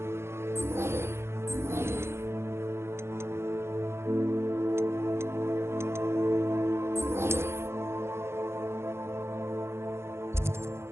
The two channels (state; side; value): late; left; 0.12 ms